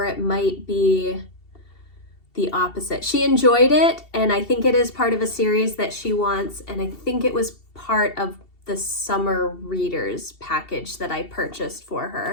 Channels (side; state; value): right; late; 2.7 ms